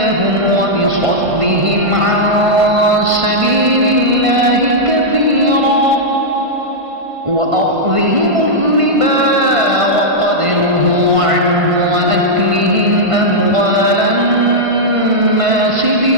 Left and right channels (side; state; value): left; late; 1.5 ms